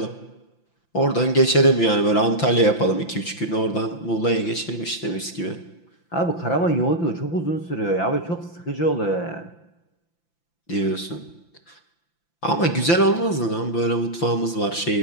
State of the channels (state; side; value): late; right; 5.9 ms